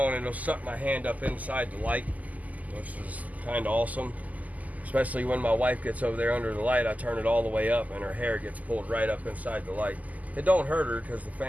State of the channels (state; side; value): late; left; 0.077 ms